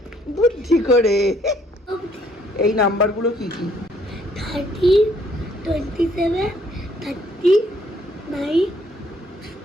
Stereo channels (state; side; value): normal; both; correlation 0.65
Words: বুদ্ধি করে। এই নাম্বারগুলো কি কি? 30, 27, 39,